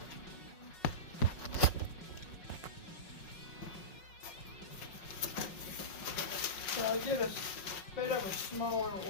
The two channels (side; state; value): right; late; 5.5 ms